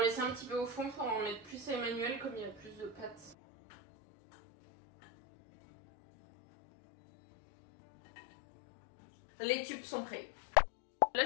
laisser un petit peu au fond pour en mettre plus à Emmanuel, comme il y a plus de pâtes. Les tubes sont prêts. Là,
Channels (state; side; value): drops out; right; at 3.4 s